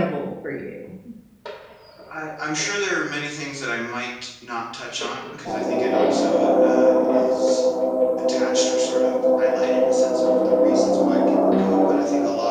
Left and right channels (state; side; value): identical; both; correlation 1.00